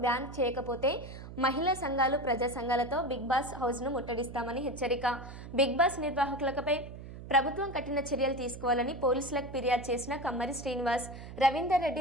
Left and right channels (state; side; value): noise; right; hum, 12 dB below the sound